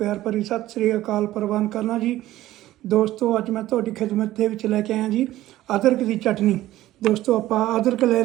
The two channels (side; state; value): left; quieter; 15.1 dB